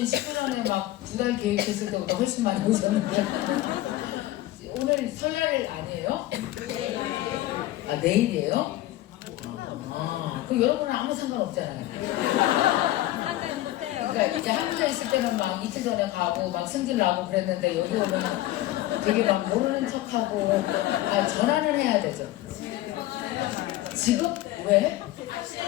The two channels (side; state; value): right; quieter; 15.6 dB